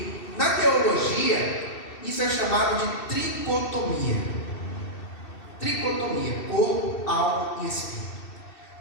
na teologia, isso é chamado de tricotomia. Tricotomia, corpo, alma e espírito.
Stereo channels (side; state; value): right; late; 2.7 ms